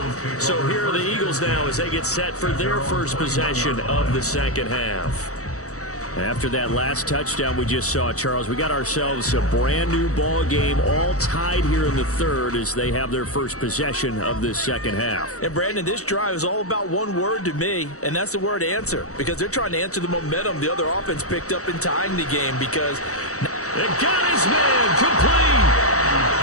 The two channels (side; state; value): right; late; 0.65 ms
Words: So here are the Eagles now as they get set for their first possession of the second half. After that last touchdown we just saw, Charles, we got ourselves a brand new ball game, all tied here in the 3rd as they have their first possession of this second half. And Brandon, this drive is all about one word to me, and that's the word answer, because they're trying to answer the momentum the other offense picked up in tying the game, because they got his man complete.